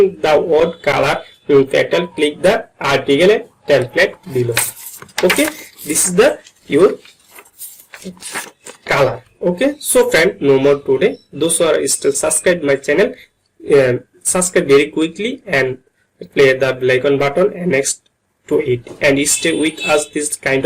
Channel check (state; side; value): identical; both; correlation 1.00